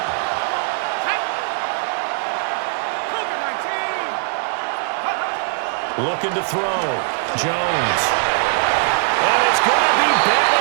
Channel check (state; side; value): silent; left; digital silence